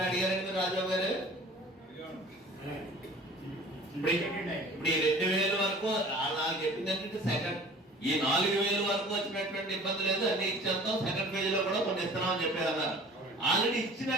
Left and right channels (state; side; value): normal; both; correlation 0.46